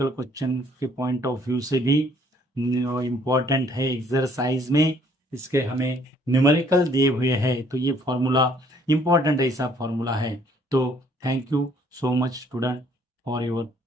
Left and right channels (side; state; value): both; normal; correlation 0.63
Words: क्वेश्चन के पॉइंट ऑफ व्यू से भी इम्पोर्टेंट है। एक्सरसाइज में इसके हमें न्यूमेरिकल दिए हुए हैं, तो ये फॉर्मूला इम्पोर्टेंट ऐसा फॉर्मूला है। तो thank you so much student for your